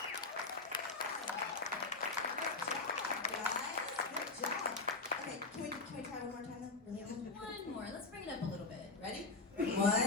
job. Okay, can we try one more time then? Really? One more. Let's bring it up a little bit. Ready?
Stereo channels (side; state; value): right; quieter; 3.7 dB